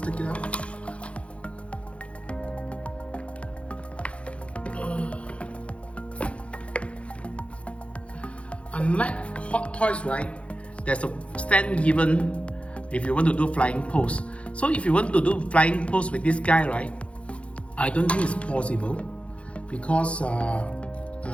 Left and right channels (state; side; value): late; right; 0.061 ms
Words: take it out. Unlike Hot Toys, right, there's a stand given if you want to do flying pose. So if you want to do flying pose with this guy, right, I don't think it's possible because